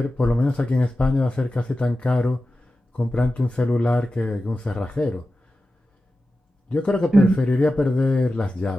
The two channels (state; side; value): normal; both; correlation 0.93